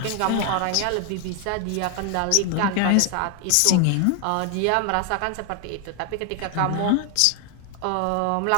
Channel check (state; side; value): different; both; correlation 0.00